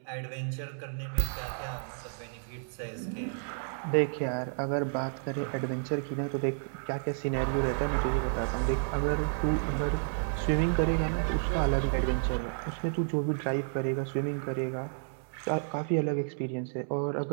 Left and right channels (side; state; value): left; silent; 57 dB below the other